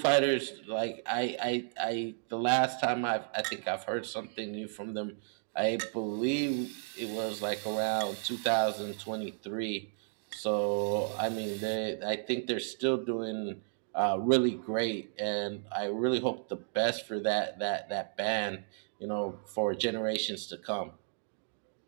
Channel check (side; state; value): left; silent; digital silence